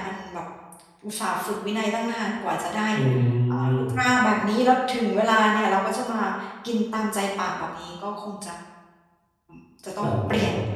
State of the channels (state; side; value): identical; both; correlation 1.00